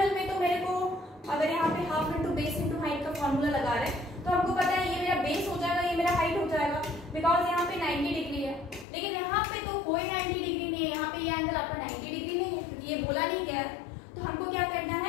में तो मेरे को, अगर यहाँ पे half into base into height का फॉर्मूला लगा रहे हैं तो हमको पता है ये मेरा बेस हो जाएगा, ये मेरा हाइट हो जाएगा, बिकॉज यहाँ पे 90 डिग्री है. लेकिन यहाँ पे तो कोई 90 डिग्री नहीं है. यहाँ पे ये एंगल आपका 90 डिग्री नहीं है क्योंकि ये बोला नहीं गया है. तो हमको क्या करना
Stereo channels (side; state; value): right; drops out; at 8.8 s